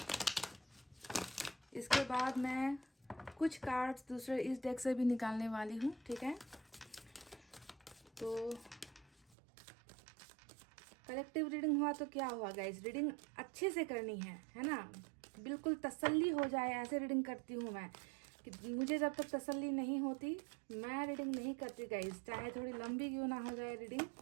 इसके बाद मैं कुछ कार्ड्स दूसरे इस डेक से भी निकालने वाली हूँ, ठीक है। तो कलेक्टिव रीडिंग हुआ तो क्या हुआ गाइस, रीडिंग अच्छे से करनी है ना। बिल्कुल तसल्ली हो जाए ऐसे रीडिंग करती हूँ मैं, कि मुझे जब तक तसल्ली नहीं होती मैं रीडिंग नहीं करती गाइस। चाहे थोड़ी लंबी क्यों ना हो जाए रीडिंग,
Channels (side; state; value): left; drops out; at 9.3 s